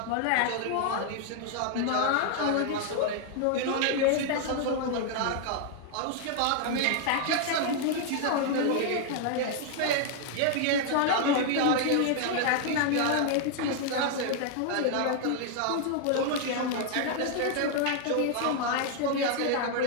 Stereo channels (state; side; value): different; both; correlation 0.00